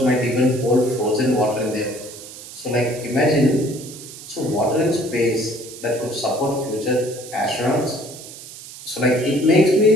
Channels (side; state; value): right; noise; hiss, 15 dB below the sound